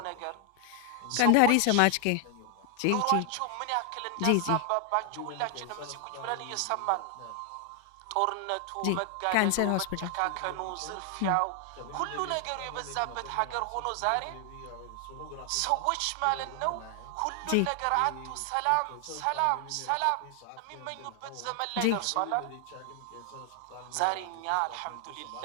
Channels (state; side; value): different; both; correlation 0.00